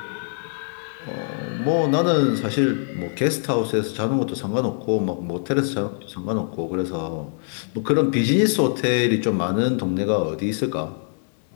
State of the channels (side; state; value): right; silent; digital silence